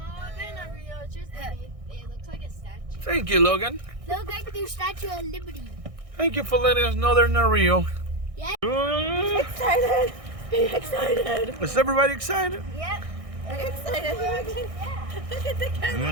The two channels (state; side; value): late; left; 1.6 ms